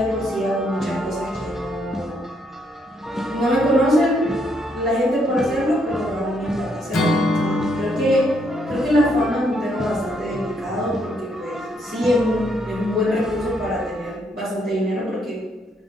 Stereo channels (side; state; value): both; normal; correlation 0.73